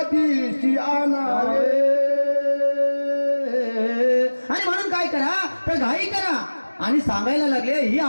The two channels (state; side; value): inverted; both; correlation -1.00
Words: आणावे. आणि म्हणून काय करा तर घाई करा आणि सांगायला लागले ही